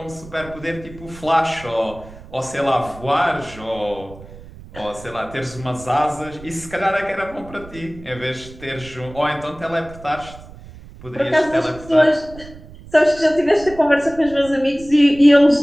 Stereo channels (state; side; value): noise; right; rumble, 18 dB below the sound